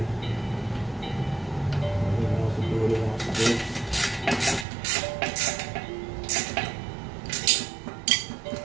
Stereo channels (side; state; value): left; drops out; at 4.7 s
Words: It wants to do what it wants to do.